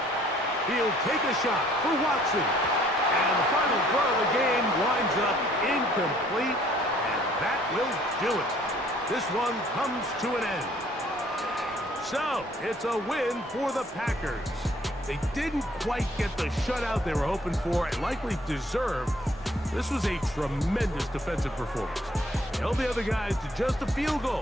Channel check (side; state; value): both; normal; correlation 0.60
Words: He'll take a shot for Watson. And the final throw of the game winds up incomplete, and that will do it. This one comes to an end. So, it's a win for the Packers. They didn't quite get the shutout they were hoping for and likely deserved. This was a tremendous defensive performance. Held the other guys to just a field